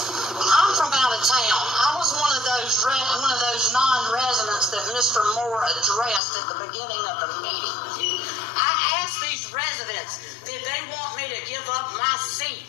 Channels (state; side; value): drops out; right; at 6.2 s